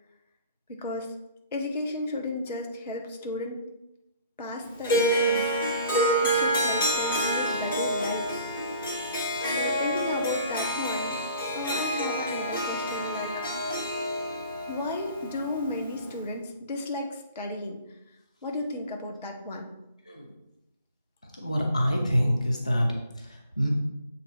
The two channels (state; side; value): inverted; both; correlation -0.50